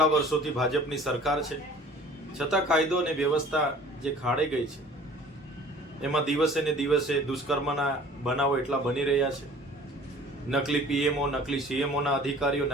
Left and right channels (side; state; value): both; normal; correlation 0.48